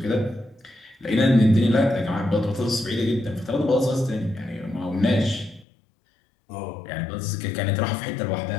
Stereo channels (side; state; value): right; drops out; at 5.7 s